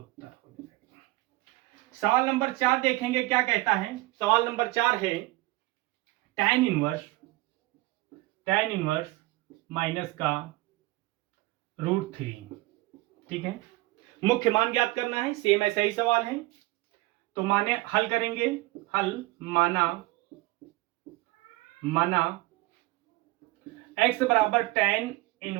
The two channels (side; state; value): left; quieter; 20.2 dB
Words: हो जाएगा। सवाल नंबर 4 देखेंगे, क्या कहता है। सवाल नंबर 4 है tan इनवर्स माइनस का √3, ठीक है, मुख्य मान ज्ञात करना है। सेम ऐसा ही सवाल है, तो माने हल करेंगे। माना x बराबर tan